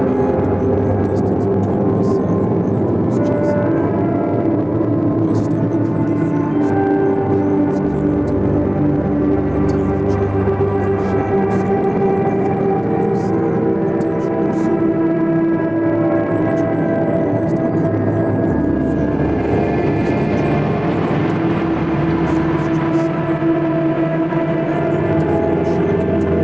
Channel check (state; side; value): noise; left; rumble, 23 dB below the sound